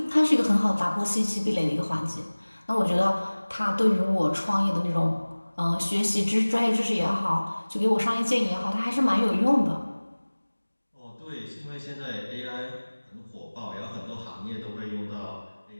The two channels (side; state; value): both; inverted; correlation -1.00